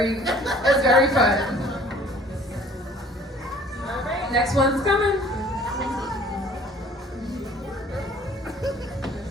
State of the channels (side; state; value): both; normal; correlation 0.53